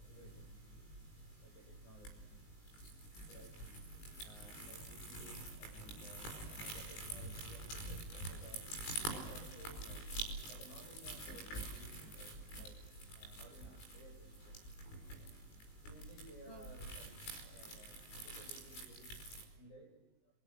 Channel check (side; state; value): right; late; 19 ms